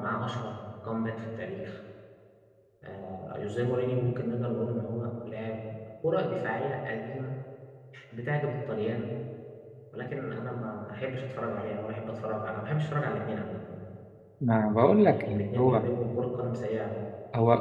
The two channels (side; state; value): both; identical; correlation 1.00